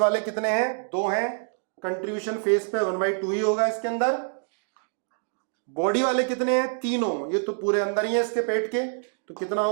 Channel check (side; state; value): left; silent; digital silence